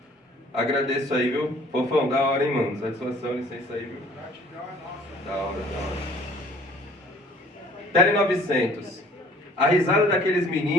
Agradeço aí, viu? Fofão, da hora, hein, mano? Satisfação, licença aí, viu? Da hora. Tele 900. A risada daqueles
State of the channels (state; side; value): normal; both; correlation 0.54